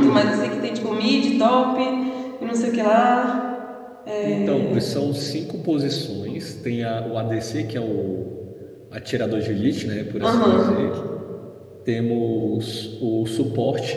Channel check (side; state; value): both; identical; correlation 1.00